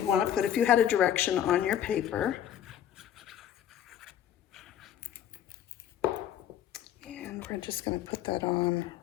want to put if you had a direction on your paper. we're just going to put that on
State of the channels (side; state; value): right; quieter; 10.3 dB